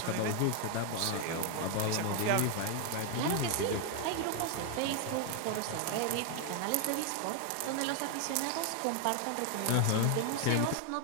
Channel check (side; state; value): both; different; correlation 0.00